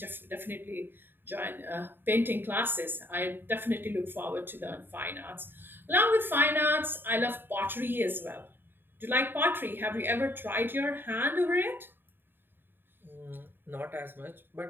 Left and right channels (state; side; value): late; left; 0.097 ms